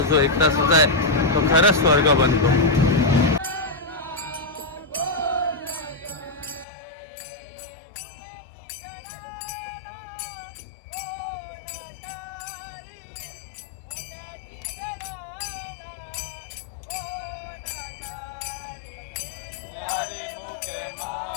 जो 1 तासाचा आहे तो खरंच स्वर्ग बनतो.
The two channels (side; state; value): right; drops out; at 6.7 s